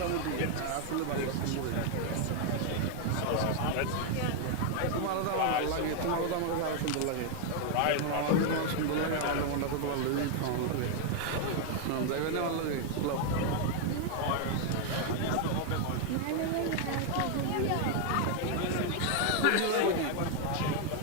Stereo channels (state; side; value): different; both; correlation 0.00